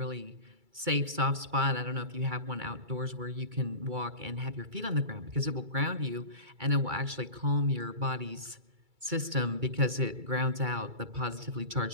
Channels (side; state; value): left; late; 2.3 ms